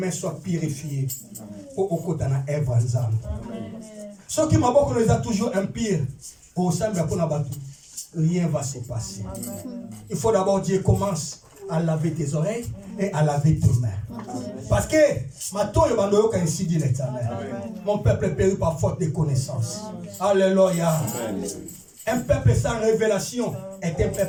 soient purifiées. Pour okotana evanzam. Ce qui m'a beaucoup nous a toujours impur. Au sein de la rien va se passer. Il faut d'abord Dieu commence à laver tes oreilles et à laver tes mains. Parce que mon peuple est péri par faute de connaissance. Alléluia. Un peuple sans révélation est un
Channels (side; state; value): both; identical; correlation 1.00